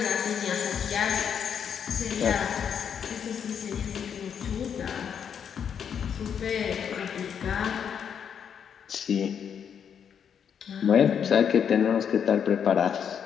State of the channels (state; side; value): quieter; right; 7.8 dB